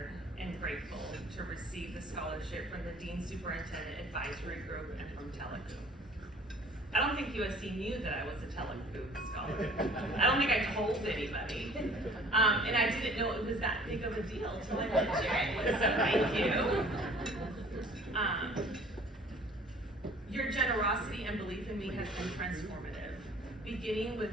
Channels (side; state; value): both; normal; correlation 0.51